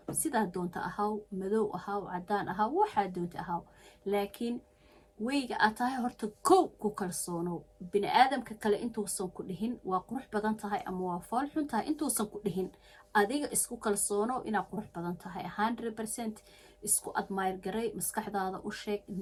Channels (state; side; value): identical; both; correlation 1.00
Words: sidaa doonta ahaw, madow ahaw, cadaan ahaw, waxaa doonta ahaw, laakiin weyga aad tahay horta kow ku kalsoonow. bini aadamka kale intuusan ku dhihin waa qurux badan tahay ama waa fool xun tahay, intuusan ku dhihin adiga isku kalsoonow inaad qurux badan tahay 100%. isku admire garay, maskaxdaada u sheeg,